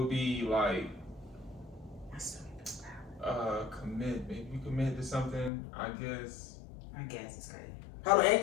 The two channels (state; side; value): drops out; right; at 5.5 s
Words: be like commitment. You commit to something, I guess. It's crazy. Hold on,